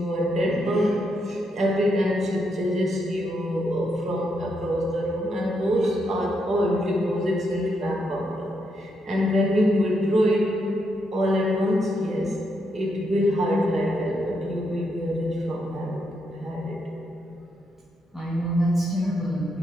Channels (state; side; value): normal; both; correlation 0.80